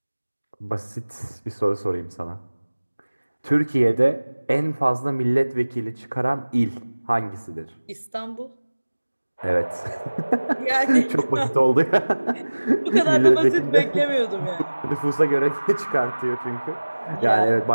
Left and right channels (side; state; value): both; inverted; correlation -1.00